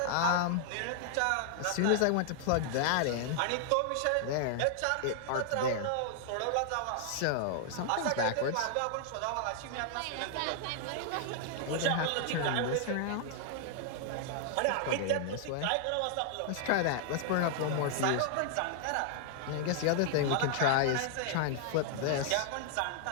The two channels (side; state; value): both; different; correlation 0.00